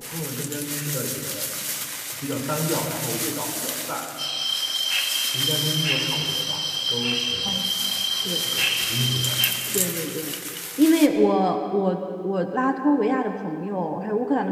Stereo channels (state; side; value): identical; both; correlation 1.00